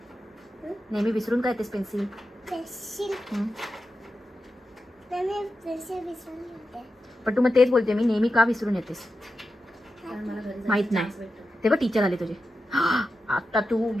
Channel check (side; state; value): both; normal; correlation 0.91